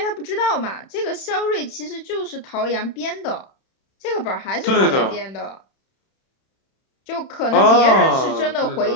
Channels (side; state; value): right; late; 31 ms